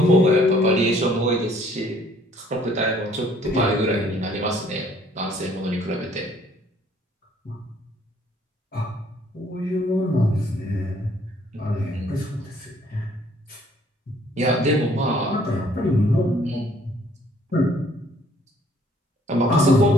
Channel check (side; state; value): both; normal; correlation 0.61